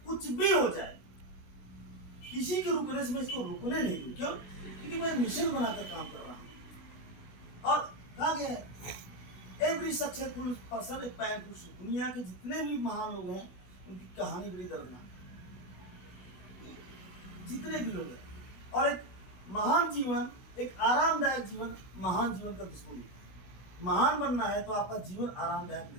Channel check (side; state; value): right; late; 16 ms